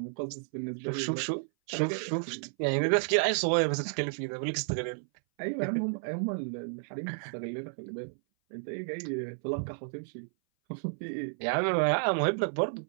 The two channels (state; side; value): silent; left; 57 dB below the other